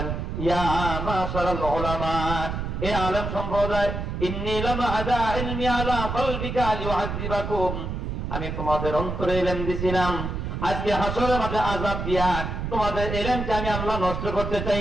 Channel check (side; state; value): right; noise; rumble, 4 dB below the sound